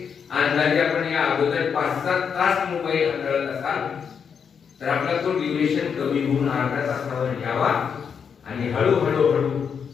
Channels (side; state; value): right; quieter; 6.8 dB